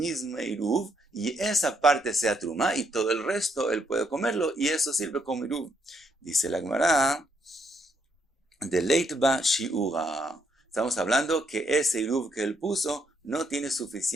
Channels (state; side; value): normal; both; correlation 0.74